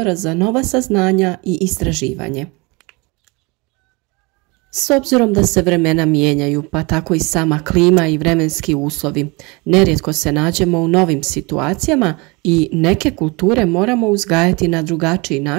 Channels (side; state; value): left; quieter; 26.8 dB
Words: za nova saznanja i istraživanje. S obzirom da se vremena mijenjaju, pa tako i sama klima i vremenski uslovi, nerijetko se nađemo u novim situacijama i neke kulture moramo uzgajati na drugačiji